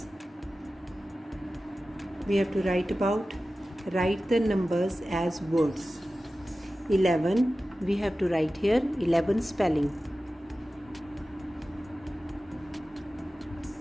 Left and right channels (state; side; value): normal; both; correlation 0.95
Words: we have to write the numbers as words. 11 we have to write here 11 spelling.